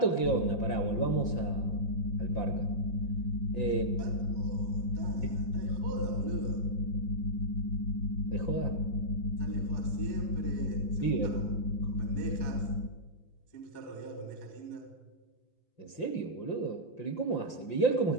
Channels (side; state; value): right; late; 5.8 ms